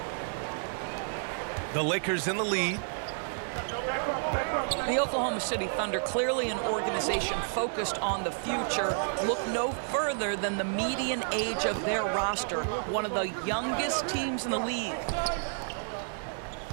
The Lakers in the lead. The Oklahoma City Thunder, clearly an organization focused on the future, look no further than the median age of their roster, one of the youngest teams in the league.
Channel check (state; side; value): silent; left; digital silence